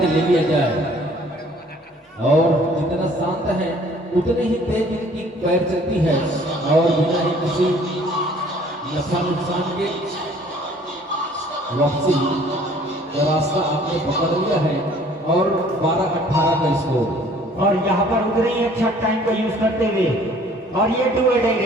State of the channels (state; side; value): normal; both; correlation 0.55